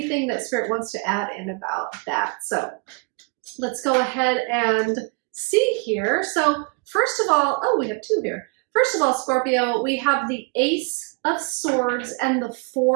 that Spirit wants to add in about that. So let's go ahead and see here. So first of all, oh, we have two here. First of all, Scorpio, we have the Ace of Swords and the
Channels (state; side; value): quieter; left; 31.0 dB